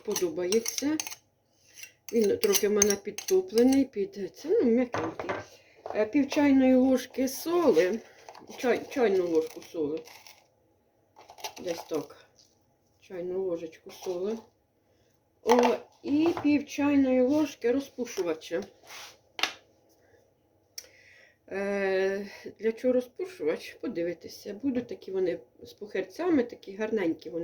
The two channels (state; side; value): identical; both; correlation 1.00